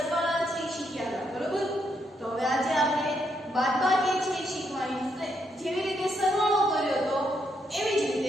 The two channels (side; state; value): both; normal; correlation 0.77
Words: છે એ શીખ્યા હતા, બરોબર? તો હવે આજે આપણે બાદબાકી છે એ શીખવાની છે. જેવી રીતે સરવાળો કર્યો તો એવી જ